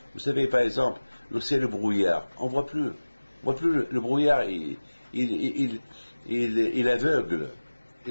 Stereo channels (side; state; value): both; inverted; correlation -1.00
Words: Vous savez, par exemple, lorsqu'il y a le brouillard, on voit plus le brouillard, il aveugle.